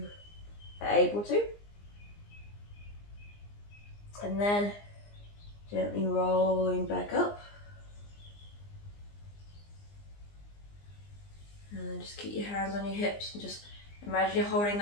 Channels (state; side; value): late; right; 20 ms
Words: are able to. And then gently rolling back up. And then just keep your hands on your hips and just imagine you're holding